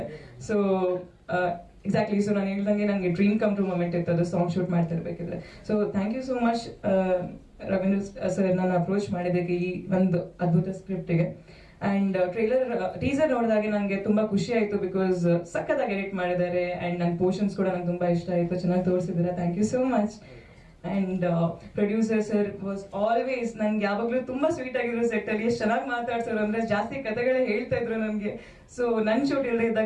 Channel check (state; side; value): identical; both; correlation 1.00